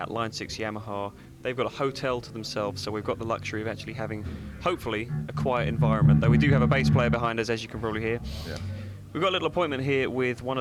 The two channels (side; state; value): both; identical; correlation 1.00